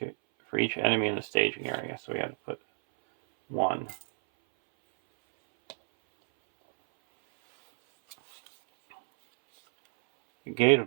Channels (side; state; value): left; silent; 59 dB below the other